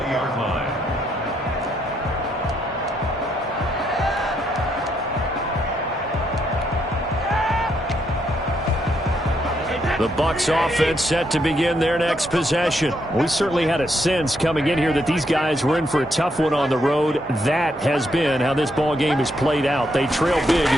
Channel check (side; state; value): both; normal; correlation 0.76